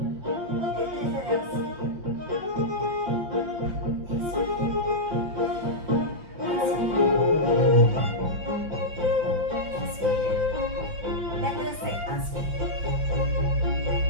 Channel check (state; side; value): late; left; 6.0 ms